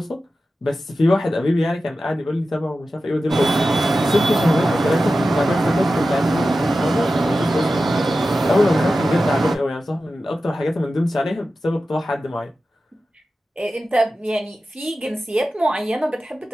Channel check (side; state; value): both; normal; correlation 0.93